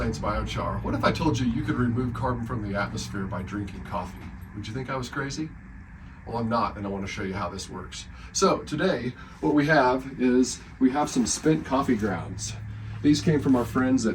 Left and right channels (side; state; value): both; identical; correlation 1.00